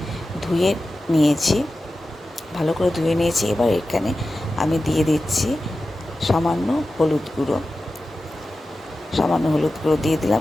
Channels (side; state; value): both; normal; correlation 0.94